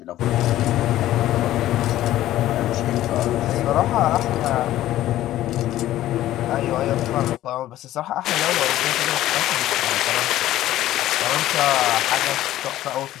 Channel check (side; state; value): right; quieter; 14.1 dB